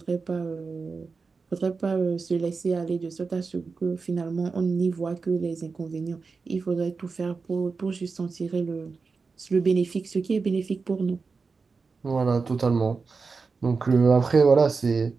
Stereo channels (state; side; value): quieter; left; 4.6 dB